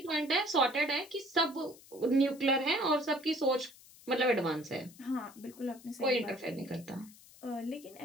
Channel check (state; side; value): noise; left; hiss, 22 dB below the sound